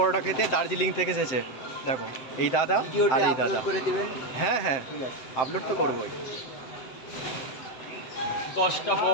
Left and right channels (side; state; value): right; late; 7.8 ms